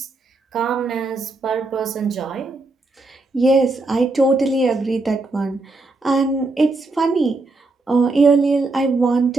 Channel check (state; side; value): quieter; left; 3.3 dB